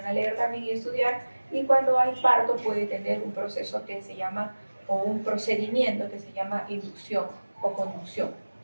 a leer también y estudiar, y cuando hay parto puede tener un proceso que se llama, o un procedimiento que se llama inducción o conducción.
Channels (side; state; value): both; inverted; correlation -1.00